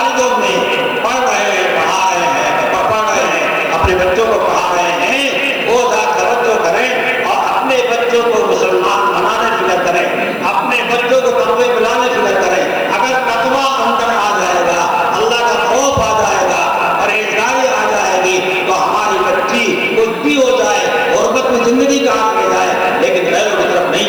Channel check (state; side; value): noise; left; hiss, 25 dB below the sound